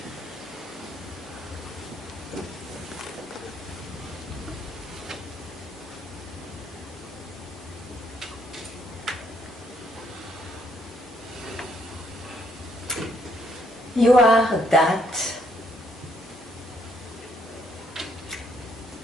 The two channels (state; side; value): normal; both; correlation 0.71